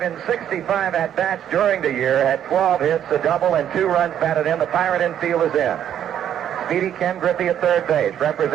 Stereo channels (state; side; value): quieter; left; 10.0 dB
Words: and 65 at-bats during the year, had 12 hits, a double, and 2 runs batted in. The Pirate infield is in. Speedy Ken Griffey at third base,